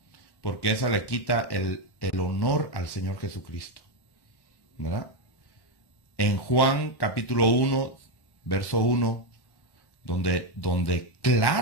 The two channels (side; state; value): right; late; 1.1 ms